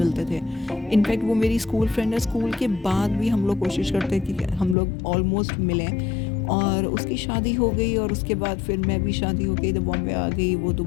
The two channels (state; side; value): drops out; right; at 4.8 s